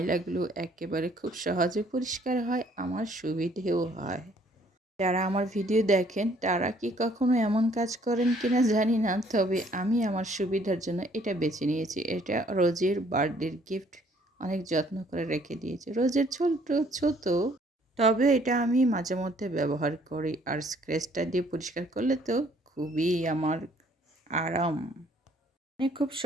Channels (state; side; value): normal; both; correlation 0.62